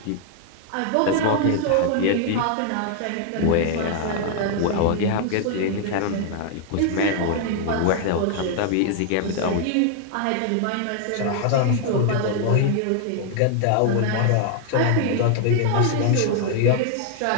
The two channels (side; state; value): both; different; correlation 0.00